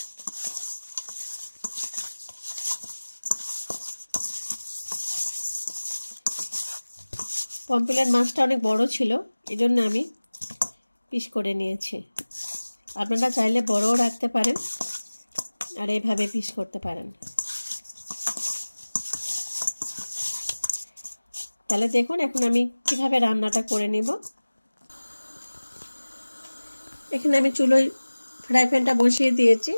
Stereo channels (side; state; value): both; inverted; correlation -1.00